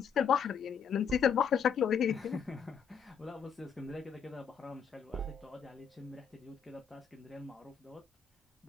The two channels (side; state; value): right; quieter; 7.1 dB